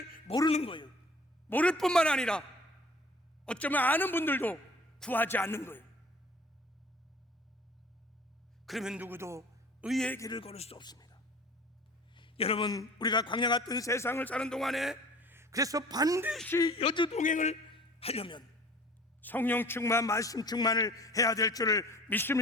모르는 거예요. 모를 뿐만 아니라 어쩌면 아는 분들도 구하지 않는 거예요. 그러면 누구도 의의 길을 걸을 수 없습니다. 여러분 우리가 광야 같은 세상을 사는 동안에 그래서 반드시 여주동행을 하려면 성령 충만, 말씀 충만을 해야 될 줄을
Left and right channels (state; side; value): normal; both; correlation 0.47